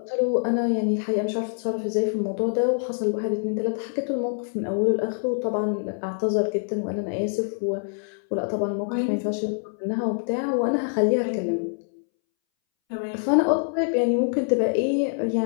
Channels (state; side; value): silent; right; 62 dB below the other